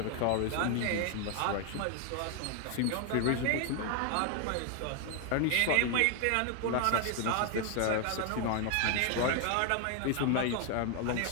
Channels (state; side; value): different; both; correlation 0.01